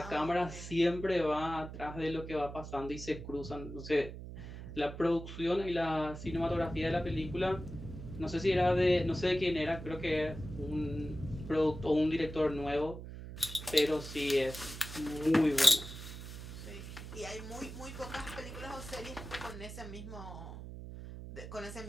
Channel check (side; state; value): right; noise; hum, 10 dB below the sound